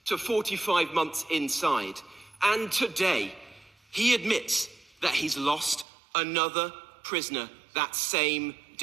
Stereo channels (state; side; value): drops out; left; at 5.9 s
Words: to 45 months inside. And today, he admits that he's lost another prisoner that same